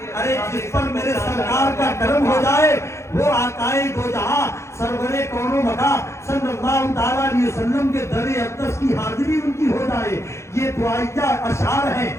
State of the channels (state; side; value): late; right; 0.13 ms